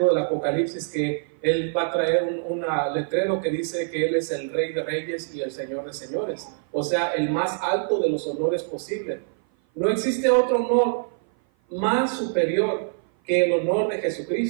del Apocalipsis que Él va a traer un letrero que dice que Él es el Rey de Reyes y el Señor de Señores. O sea, el más alto de los honores posible. No existe otro honor más superior que el honor de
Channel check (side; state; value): left; silent; 56 dB below the other